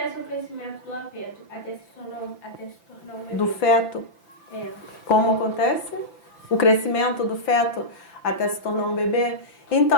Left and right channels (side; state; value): right; late; 5.9 ms